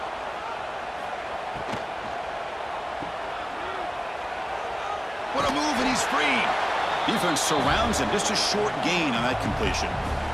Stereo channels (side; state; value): both; identical; correlation 1.00